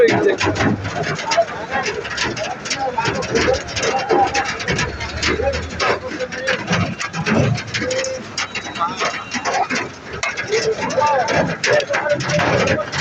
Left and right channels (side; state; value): both; identical; correlation 1.00